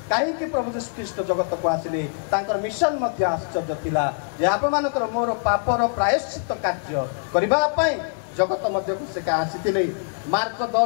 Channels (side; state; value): right; silent; digital silence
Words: କାହିଁକି ପ୍ରଭୁ ଯୀଶୁ ଖ୍ରୀଷ୍ଟ ଜଗତକୁ ଆସିଲେ ତାଙ୍କର ମିଶନ ମଧ୍ୟ ଆଶ୍ଚର୍ଯ୍ୟ ଥିଲା ଯେ ଆପଣମାନଙ୍କର ମୋର ପାପର ପ୍ରାୟଶ୍ଚିତ କାର୍ଯ୍ୟ କରିବା ପାଇଁ ଜଗତ ମଧ୍ୟକୁ ସେ ଆସିଥିଲେ। ମାର୍କ